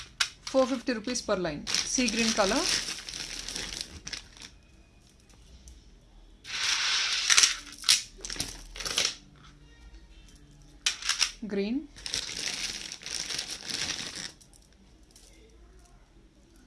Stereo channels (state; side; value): identical; both; correlation 1.00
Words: 450 rupees per line. Sea green color. Green.